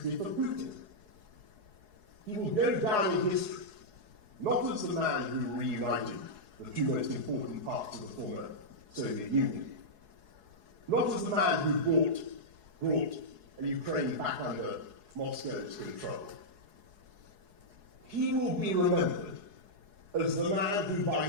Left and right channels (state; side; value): late; left; 4.7 ms